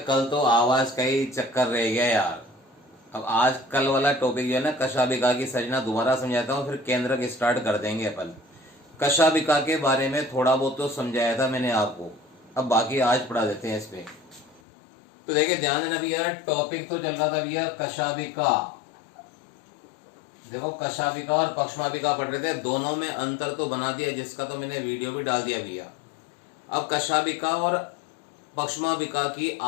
कल तो आवाज का ही चक्कर रह गया यार। अब आज कल वाला टॉपिक जो है ना, कशाबिका की सजना दोबारा समझाता हूँ, फिर केंद्रक स्टार्ट कर देंगे अपन। कशाबिका के बारे में थोड़ा बहुत तो समझाया था मैंने आपको, अब बाकी आज पढ़ा देते हैं इस पे। तो देखिए ध्यान देना भैया, टॉपिक तो चल रहा था भैया कशाबिका। देखो कशाबिका और पक्ष्माबिका पढ़ रहे थे, दोनों में अंतर तो बना दिया जिसका तो मैंने वीडियो भी डाल दिया भैया। अब कशाबिका और पक्ष्माबिका की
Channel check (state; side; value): drops out; right; at 14.6 s